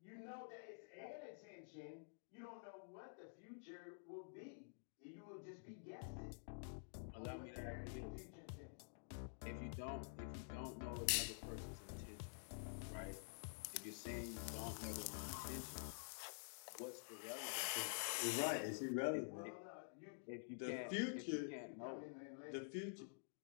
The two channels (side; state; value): right; silent; digital silence